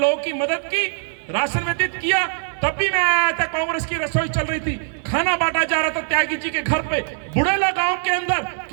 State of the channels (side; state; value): left; silent; 62 dB below the other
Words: की मदद की, राशन वितरित किया, तब भी मैं आया था, कांग्रेस की रसोई चल रही थी, खाना बांटा जा रहा था त्यागी जी के घर पे, बुढ़ेला गांव के अंदर।